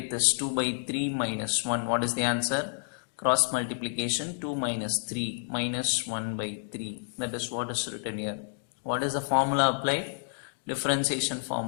this 2 by 3 minus 1. What is the answer? Cross multiplication, 2 minus 3 minus 1 by 3. That is what is written here. What is the formula applied? Differentiation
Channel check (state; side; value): silent; right; digital silence